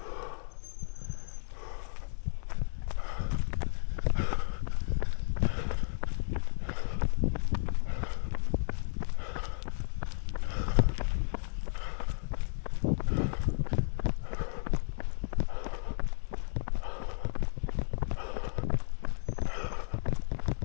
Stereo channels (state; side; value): silent; right; digital silence